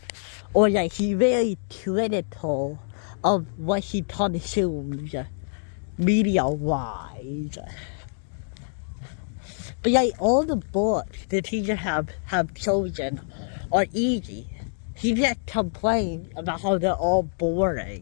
Or like, he's very critical of what he consumes media-wise. But like, all the books the teachers have chosen are easy. He just complains about how they're all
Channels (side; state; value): right; silent; digital silence